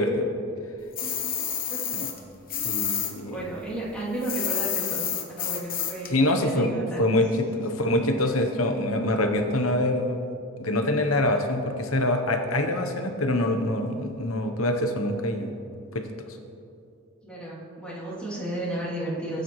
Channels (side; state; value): both; normal; correlation 0.22